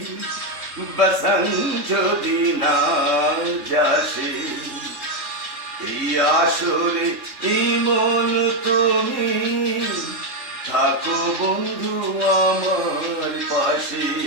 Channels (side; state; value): left; late; 3.7 ms